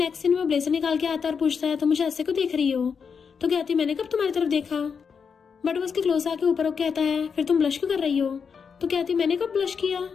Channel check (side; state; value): right; quieter; 6.2 dB